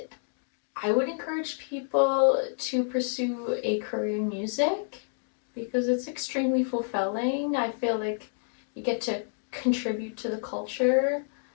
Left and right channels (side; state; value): right; silent; digital silence